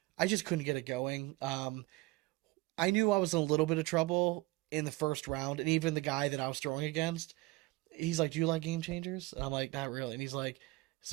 I just couldn't get it going. I knew I was in a little bit of trouble in the first round, and even the guy that I was throwing against, he's like, "Do you like game changers?" And I'm like, "Not really." And he's like,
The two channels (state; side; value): quieter; left; 20.7 dB